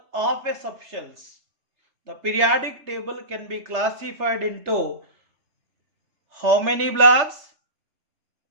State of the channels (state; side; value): late; left; 3.3 ms